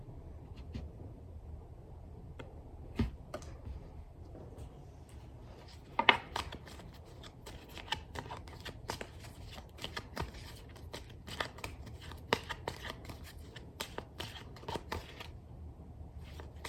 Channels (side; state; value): both; identical; correlation 1.00